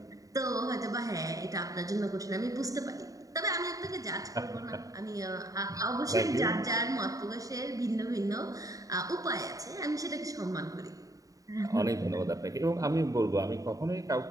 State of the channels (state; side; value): late; left; 0.16 ms